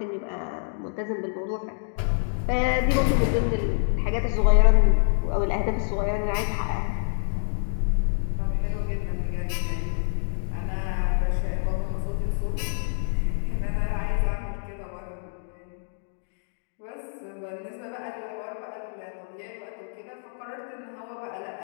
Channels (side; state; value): right; silent; digital silence